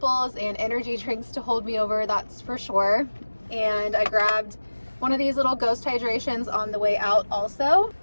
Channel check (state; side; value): inverted; both; correlation -1.00